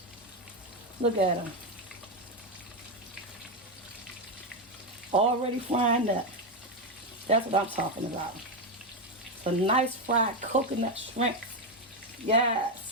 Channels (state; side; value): normal; both; correlation 0.08